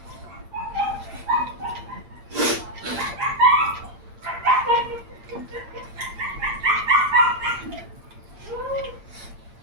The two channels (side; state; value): left; late; 8.7 ms